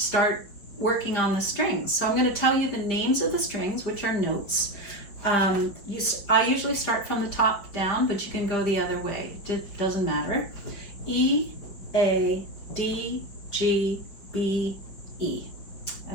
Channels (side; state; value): right; late; 5.4 ms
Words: working on the strings. So I'm going to tell you the names of the strings, which are notes. I usually start from the top down, but you can go the other way. It doesn't matter. E, A, D, G, B, E.